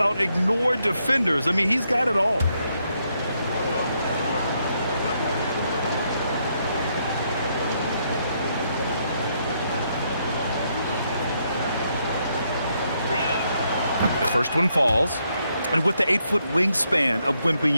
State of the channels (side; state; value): both; inverted; correlation -0.76